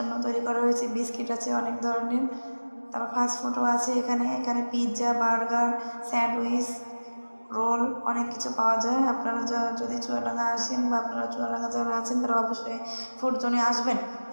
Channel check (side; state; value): both; inverted; correlation -1.00